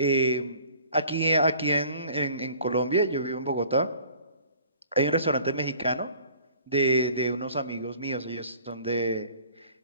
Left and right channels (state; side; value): inverted; both; correlation -0.51